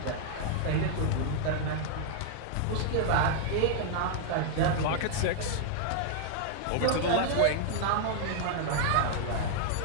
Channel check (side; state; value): both; different; correlation -0.01